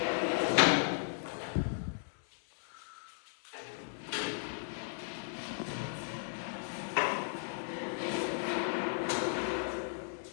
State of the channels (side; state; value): right; silent; digital silence